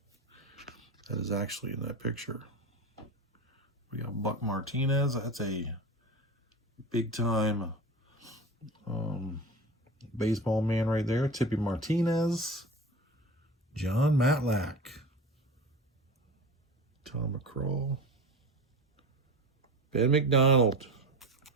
that is actually in that picture. We got Buck Martinez. That's a big-time baseball man right there. Tippy Martinez. John Matlack. Tom McCraw. Ben McDonald.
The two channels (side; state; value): both; normal; correlation 0.31